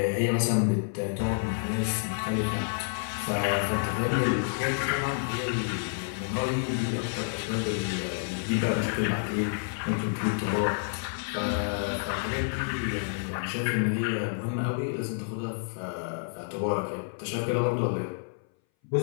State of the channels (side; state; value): right; silent; 59 dB below the other